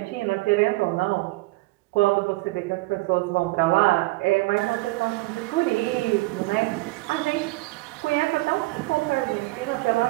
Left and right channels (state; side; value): quieter; left; 22.0 dB